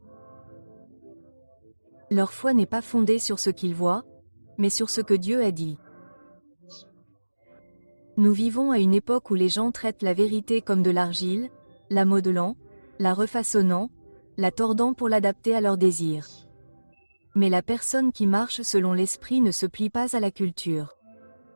Leur foi n'est pas fondée sur ce qu'ils voient, mais sur ce que Dieu a dit. Nous vivons à une époque où les gens traitent la vérité comme de l'argile, la modelant, la refaçonnant, la tordant pour l'adapter à leurs désirs. Mais la personne qui marche selon l'esprit ne se plie pas à la culture.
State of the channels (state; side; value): inverted; both; correlation -1.00